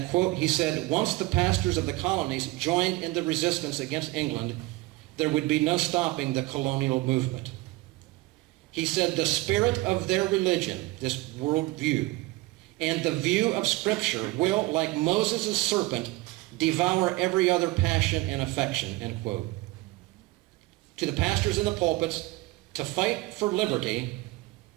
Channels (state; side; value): quieter; left; 20.2 dB